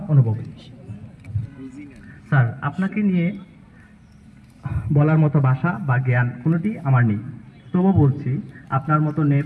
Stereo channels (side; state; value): both; identical; correlation 1.00